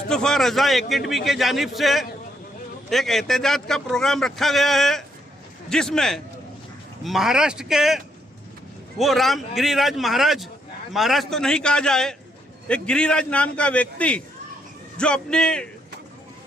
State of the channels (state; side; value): normal; both; correlation 0.74